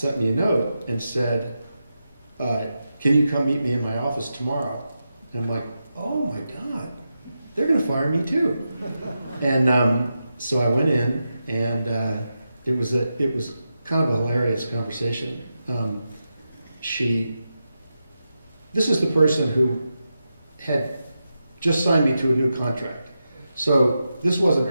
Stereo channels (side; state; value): both; inverted; correlation -0.89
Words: me a note and said, can you come meet me in my office tomorrow? And I'm like, oh my God, they're gonna fire me too. And so I went in, and it was kind of a hilarious conversation. This is the person who had just signed me to a new contract. So this wasn't